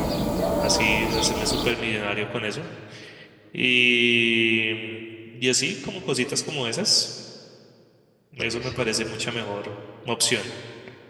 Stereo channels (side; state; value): both; identical; correlation 1.00